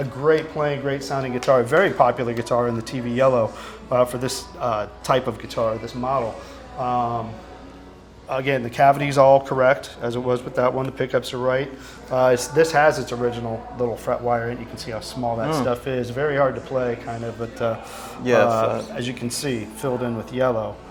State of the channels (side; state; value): both; identical; correlation 1.00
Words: great playing, great sounding guitar. A very popular guitar in the TV Yellow for this type of guitar, this model. Again, the cavity's all correct, as it was with that one. The pickups are right. This has its original little fret wire in it. You can see how small that stuff is. Very hard to play, kind of, but as you can see, filled in with yellow.